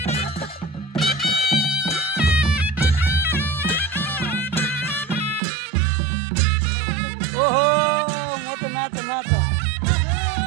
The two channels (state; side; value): drops out; left; at 5.4 s